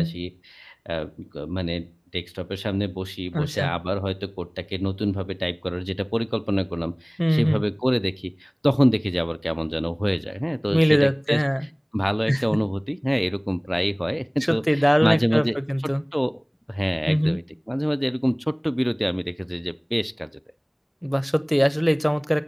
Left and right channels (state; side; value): identical; both; correlation 1.00